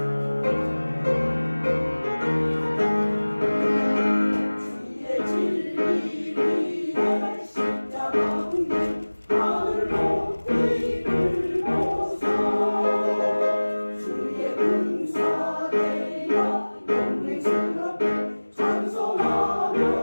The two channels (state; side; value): inverted; both; correlation -1.00